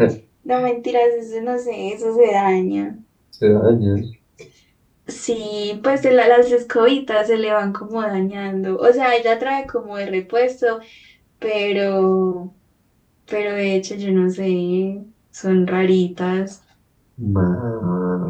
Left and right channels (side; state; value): both; identical; correlation 1.00